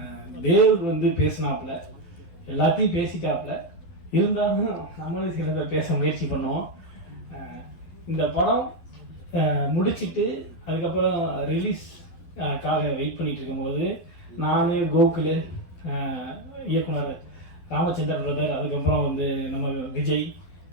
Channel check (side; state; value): right; late; 11 ms